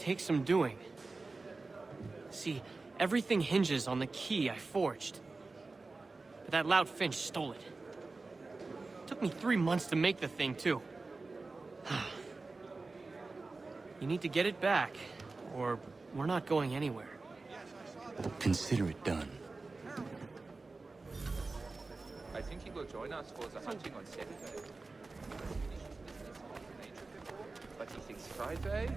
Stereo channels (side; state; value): left; quieter; 3.6 dB